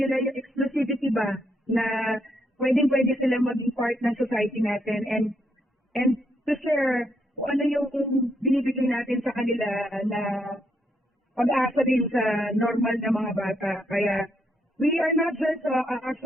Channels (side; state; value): both; normal; correlation 0.76